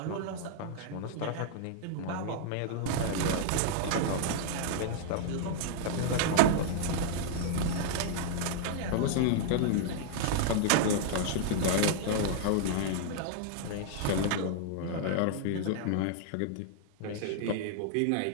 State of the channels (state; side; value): different; both; correlation -0.01